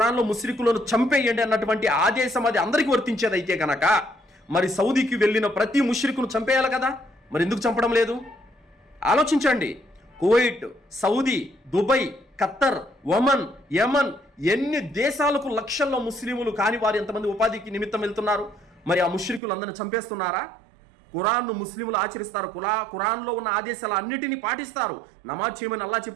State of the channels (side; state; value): left; drops out; at 19.4 s